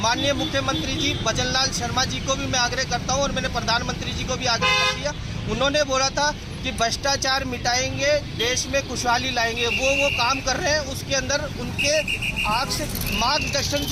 मुख्यमंत्री जी भजनलाल शर्मा जी को भी मैं आग्रह करता हूं और मैंने प्रधानमंत्री जी को भी आग्रह कर दिया। उन्होंने बोला था कि भ्रष्टाचार मिटाएंगे, देश में खुशहाली लाएंगे। वो काम कर रहे हैं। उसके अंदर उनके मार्गदर्शन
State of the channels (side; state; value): both; identical; correlation 1.00